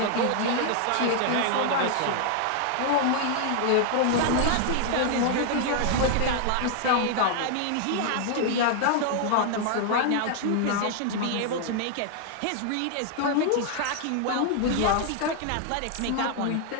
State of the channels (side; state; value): both; different; correlation 0.00